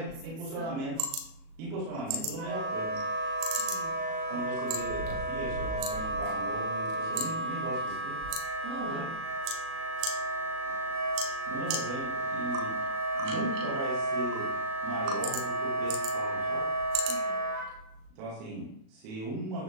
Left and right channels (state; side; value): late; left; 37 ms